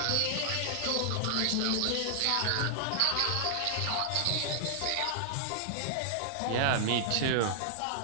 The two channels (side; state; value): both; different; correlation -0.01